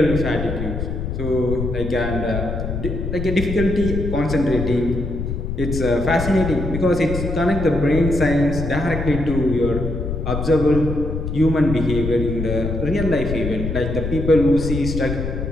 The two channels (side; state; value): left; noise; rumble, 4 dB below the sound